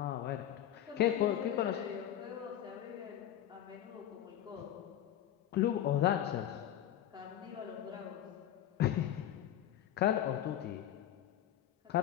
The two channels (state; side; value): quieter; right; 11.3 dB